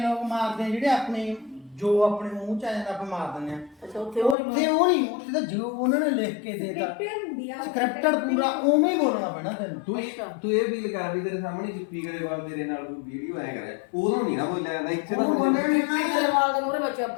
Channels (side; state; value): right; drops out; at 4.4 s